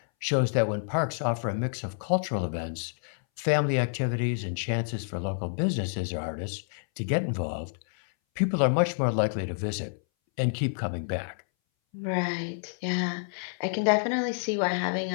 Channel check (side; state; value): right; silent; 59 dB below the other